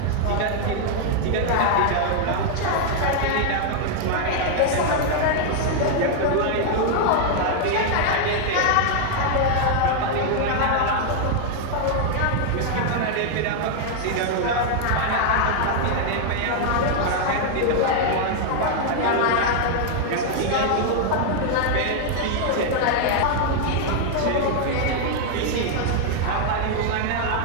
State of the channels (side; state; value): both; different; correlation 0.00